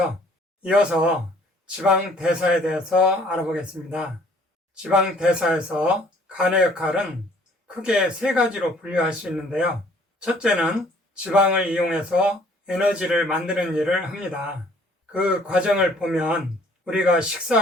이어서 지방 대사에 대해서 알아보겠습니다. 지방 대사에서 간의 역할은 크게 세 가지로 분류할 수 있는데요. 첫째는 지방을 이용해서 에너지를 만드는 일을 합니다. 그 과정을 보면 우리가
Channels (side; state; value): both; normal; correlation 0.58